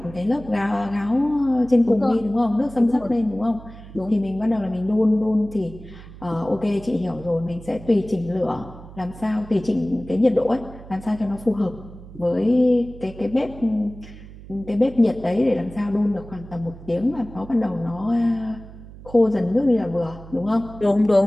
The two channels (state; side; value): noise; right; hum, 17 dB below the sound